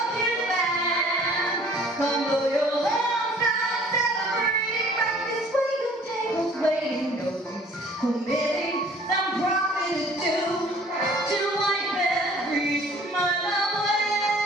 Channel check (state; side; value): normal; both; correlation 0.53